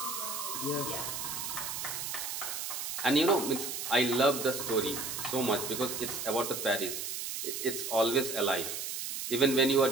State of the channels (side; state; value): right; noise; hiss, 4 dB below the sound